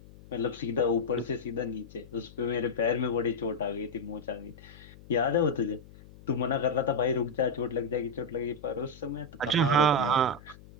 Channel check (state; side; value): noise; left; hum, 20 dB below the sound